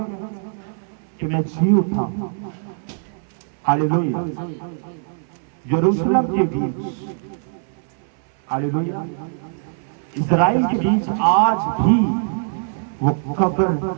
कि मैं जी उठा। हालेलुया। यरूशलेम के बीच, हालेलुया, इस्राएल के बीच आज भी वो कब्र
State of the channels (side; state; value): left; silent; 64 dB below the other